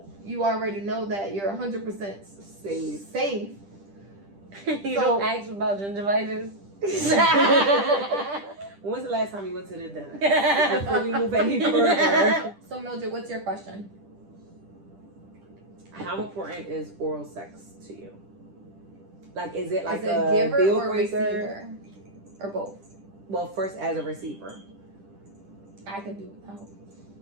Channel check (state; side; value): late; left; 10 ms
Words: you already know that you're 100% safe. You So- don't ask about gingivitis. When was the last time you went to the dentist? Before we move any further. So Mildred, what's your question? How important is oral sex to you? Like, is it like Is it a giver deal or breaker? receiver? Or both? Well, first as a receiver. I can do without.